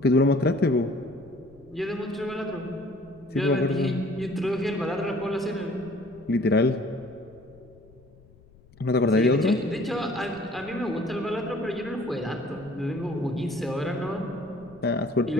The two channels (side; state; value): left; noise; rumble, 26 dB below the sound